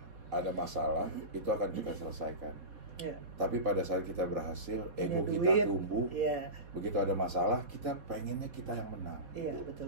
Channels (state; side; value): late; left; 4.1 ms